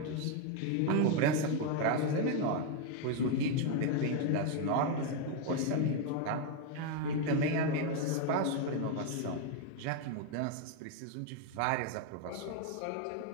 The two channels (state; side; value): different; both; correlation 0.01